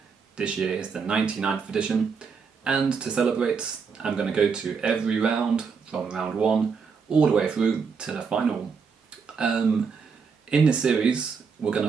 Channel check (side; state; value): left; quieter; 5.7 dB